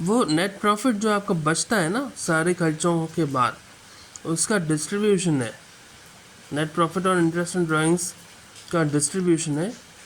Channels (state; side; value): identical; both; correlation 1.00